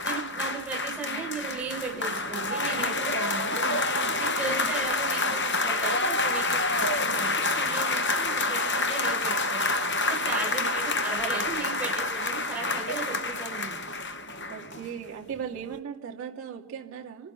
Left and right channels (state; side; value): normal; both; correlation 0.05